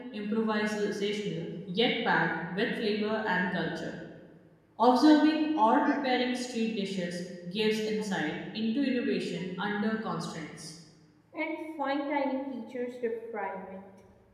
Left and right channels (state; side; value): identical; both; correlation 1.00